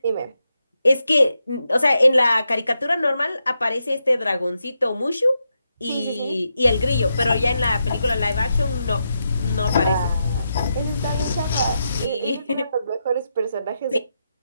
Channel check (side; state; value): both; inverted; correlation -0.85